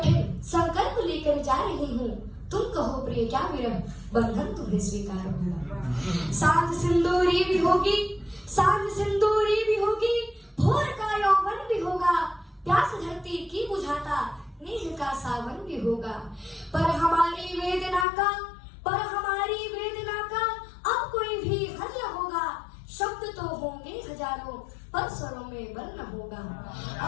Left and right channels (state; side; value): drops out; right; at 18.1 s